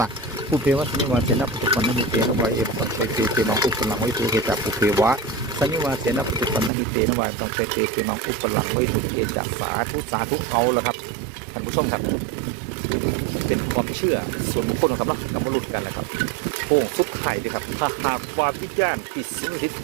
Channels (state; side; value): drops out; left; at 6.7 s